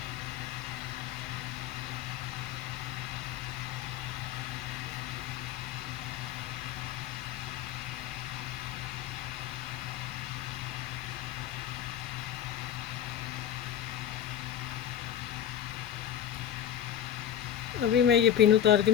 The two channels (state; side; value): quieter; right; 10.1 dB